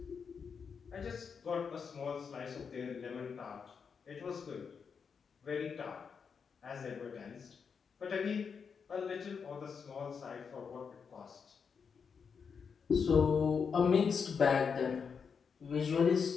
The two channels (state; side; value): quieter; right; 6.1 dB